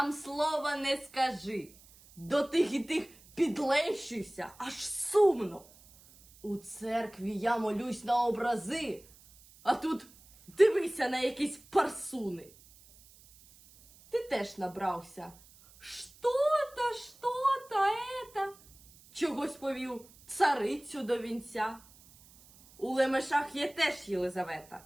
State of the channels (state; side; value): noise; right; hiss, 25 dB below the sound